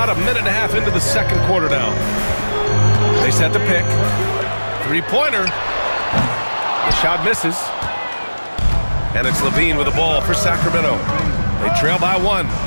a minute and a half into the second quarter now. They set the pick. Three-pointer. The shot misses. And it's Levine with the ball for Sacramento. They trail by 1.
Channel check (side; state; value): both; inverted; correlation -1.00